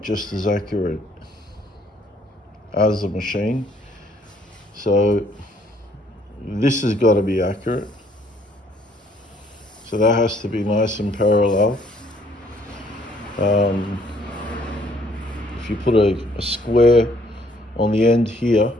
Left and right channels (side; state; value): both; normal; correlation 0.64